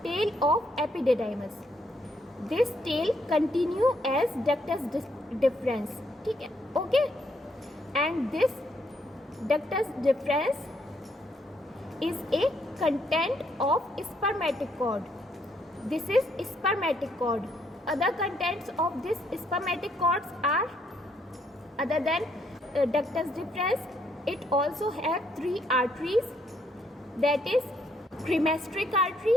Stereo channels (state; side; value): normal; both; correlation 0.72